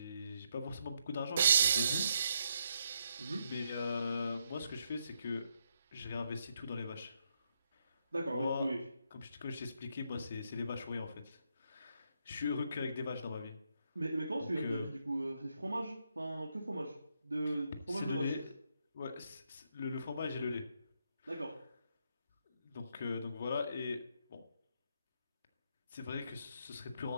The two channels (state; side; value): inverted; both; correlation -0.78